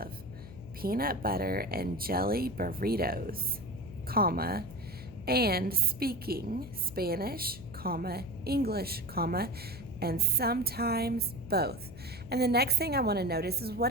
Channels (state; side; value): noise; left; hum, 15 dB below the sound